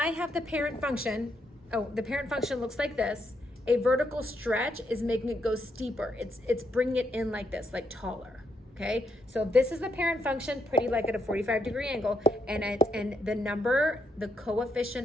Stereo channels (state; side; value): normal; both; correlation 0.76